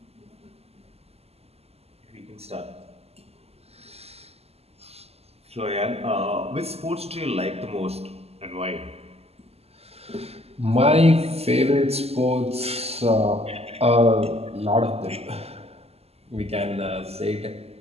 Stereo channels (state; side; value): late; left; 0.29 ms